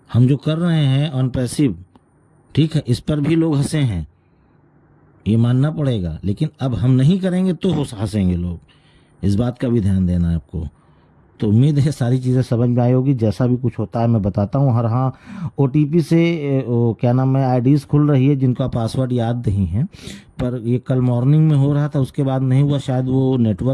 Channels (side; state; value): both; identical; correlation 1.00